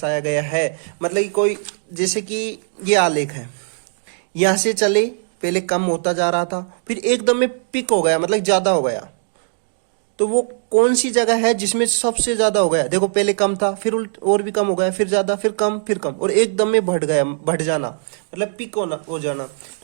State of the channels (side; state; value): left; silent; digital silence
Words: गया है। मतलब कि कोई, जैसे कि ये आलेख है, यहां से चले, पहले कम होता जा रहा था, फिर एकदम में पिक हो गया, मतलब ज्यादा हो गया। तो वो कौन सी जगह है जिसमें सबसे ज्यादा हो गया। देखो पहले कम था, फिर और भी कम हो गया, फिर ज्यादा, फिर कम, फिर कम, और एकदम में बढ़ गया, बढ़ जाना, मतलब पिक हो जाना।